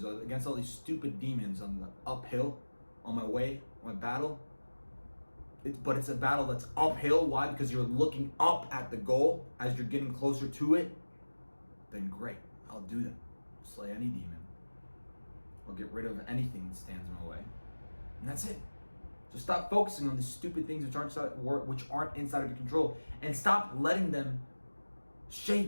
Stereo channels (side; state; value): both; inverted; correlation -1.00